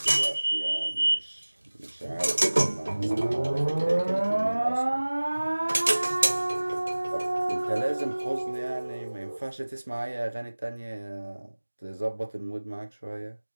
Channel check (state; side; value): inverted; both; correlation -1.00